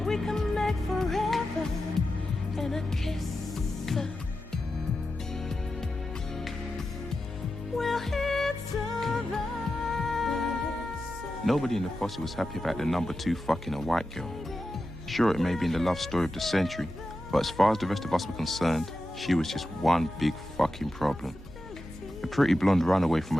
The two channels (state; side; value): normal; both; correlation 0.91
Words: We can make forever in a kiss. We'll hit survive. Nobody in the posse was happy about the number 2 fucking a white girl. Sure, it may be in the love story of the century, but as far as the rest of us were concerned, she was just one big fucking problem. A pretty blonde runaway from a